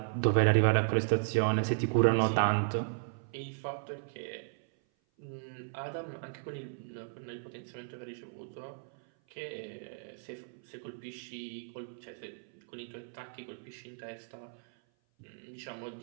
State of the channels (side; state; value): left; silent; 54 dB below the other